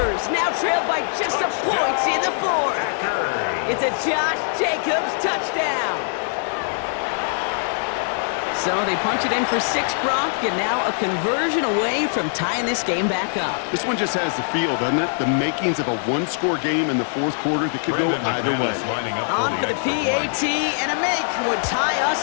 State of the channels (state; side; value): silent; right; 58 dB below the other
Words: now trail by just a point in the 4th. It's a Josh Jacobs touchdown. So they punch it in for 6, Brock, and now a conversion away from tying this game back up. This one just has the feel, doesn't it? The makings of a one-score game in the 4th quarter that could go either way. Lining up On for the PAT, and a make would tie us